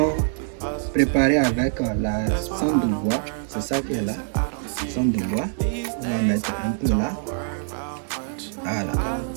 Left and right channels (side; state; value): left; silent; digital silence